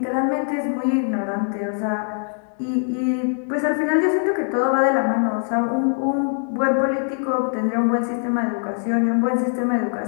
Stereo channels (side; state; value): right; silent; 64 dB below the other